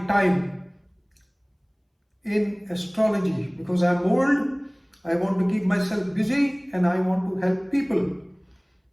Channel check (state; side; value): identical; both; correlation 1.00